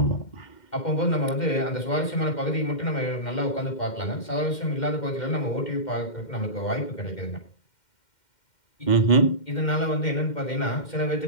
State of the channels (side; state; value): right; late; 2.1 ms